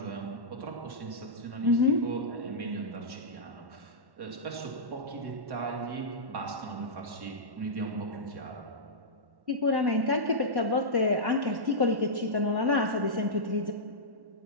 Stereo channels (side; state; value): left; late; 1.1 ms